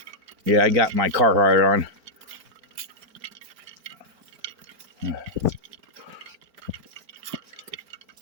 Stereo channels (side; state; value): left; late; 4.4 ms